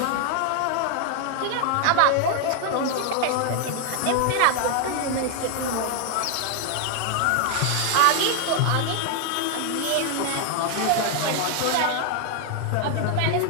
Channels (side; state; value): both; different; correlation 0.00